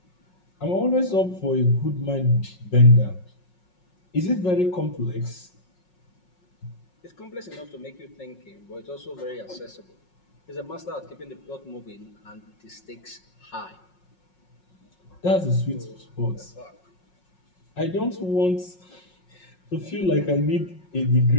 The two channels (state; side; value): late; right; 5.5 ms